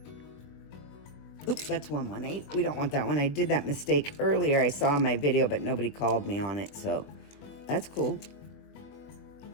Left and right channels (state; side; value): late; right; 21 ms